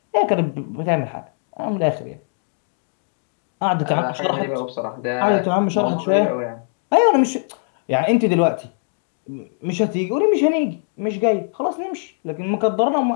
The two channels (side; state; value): right; silent; digital silence